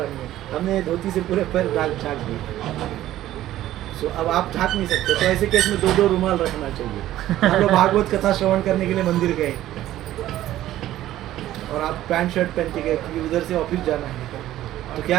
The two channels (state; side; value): quieter; left; 13.8 dB